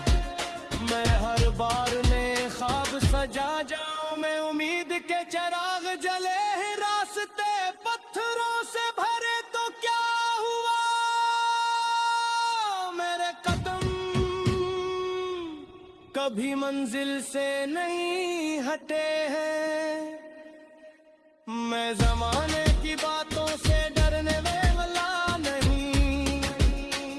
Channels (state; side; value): identical; both; correlation 1.00